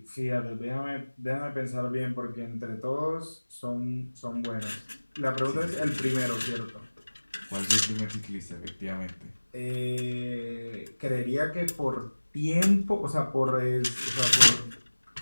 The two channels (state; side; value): inverted; both; correlation -1.00